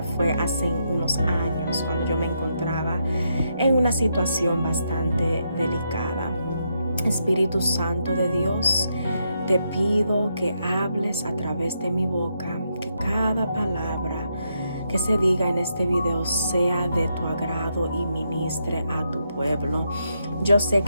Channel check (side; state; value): both; inverted; correlation -0.80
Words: fue hace unos años, cuando yo me encontraba en una situación bastante delicada. Espíritu Santo de Dios, te pido que hables a través de mi boca, que cada palabra que se diga en este video sea de tu agrado y ministre a tu pueblo. Yo sé